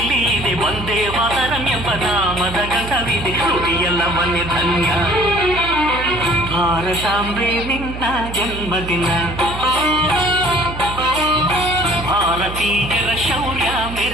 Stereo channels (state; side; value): noise; right; hum, 9 dB below the sound